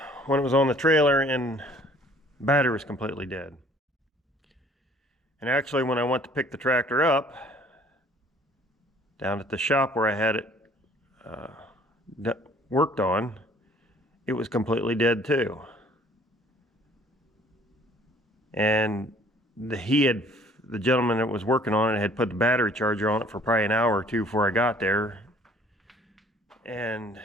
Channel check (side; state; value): both; normal; correlation 0.56